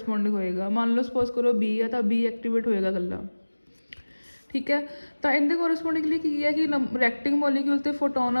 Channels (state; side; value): inverted; both; correlation -1.00